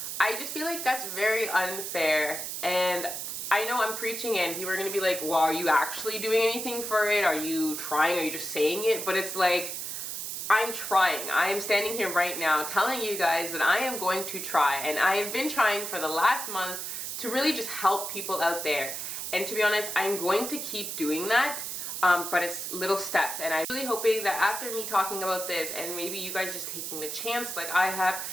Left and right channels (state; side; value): noise; right; hiss, 5 dB below the sound